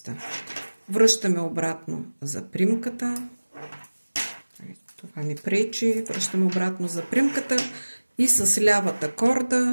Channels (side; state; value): both; inverted; correlation -1.00